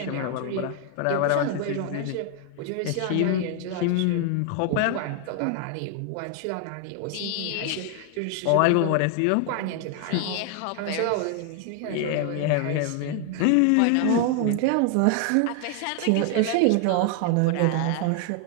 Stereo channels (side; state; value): both; different; correlation 0.00